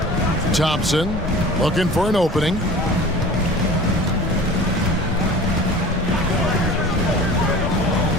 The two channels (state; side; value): normal; both; correlation 0.41